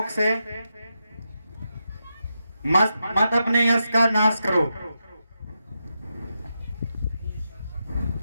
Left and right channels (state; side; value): inverted; both; correlation -0.87